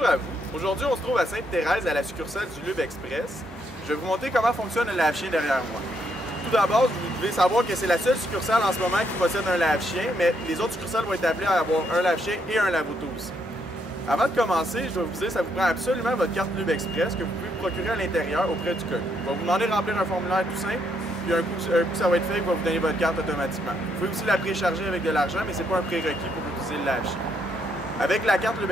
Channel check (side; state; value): both; normal; correlation 0.74